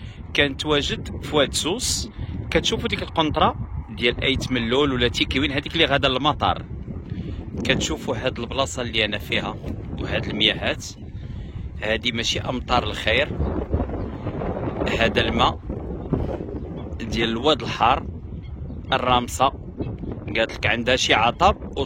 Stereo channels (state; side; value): identical; both; correlation 1.00